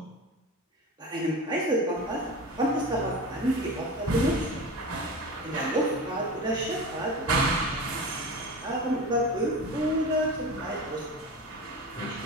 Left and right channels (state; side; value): normal; both; correlation 0.29